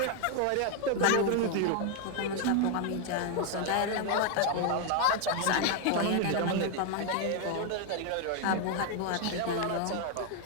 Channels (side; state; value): both; different; correlation 0.01